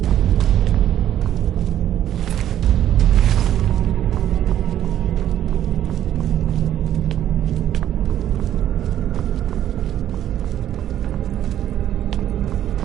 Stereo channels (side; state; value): left; quieter; 11.4 dB